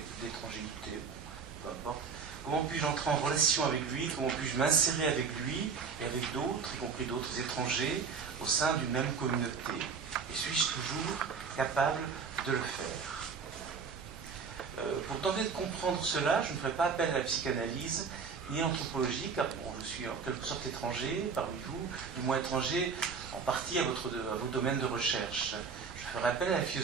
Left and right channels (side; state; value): left; quieter; 5.7 dB